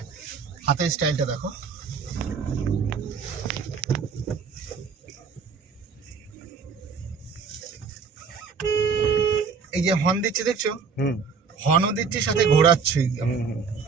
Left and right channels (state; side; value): quieter; left; 5.6 dB